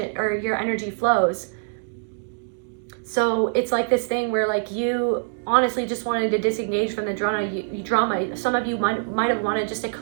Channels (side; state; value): left; silent; digital silence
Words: or your energy flows. So it's like this thing where like you honestly just wanted to disengage from the drama. Some of you might have wanted just a